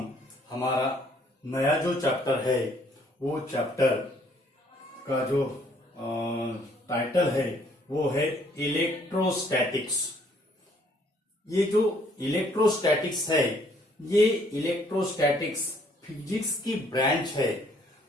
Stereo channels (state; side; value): normal; both; correlation 0.63